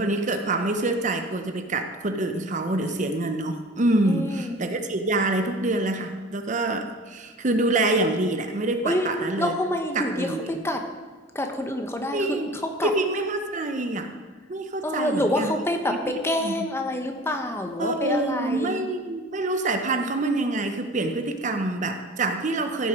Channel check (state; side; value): normal; both; correlation 0.41